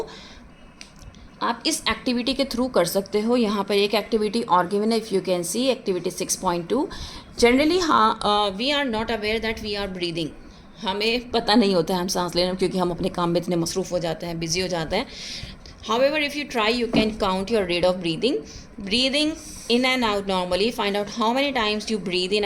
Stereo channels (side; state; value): both; identical; correlation 1.00